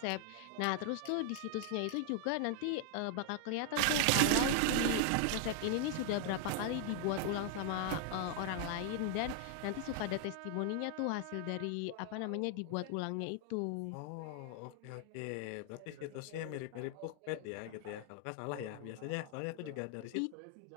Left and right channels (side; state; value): both; different; correlation 0.00